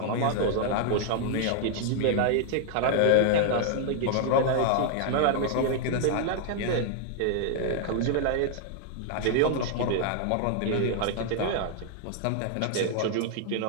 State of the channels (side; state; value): both; different; correlation 0.00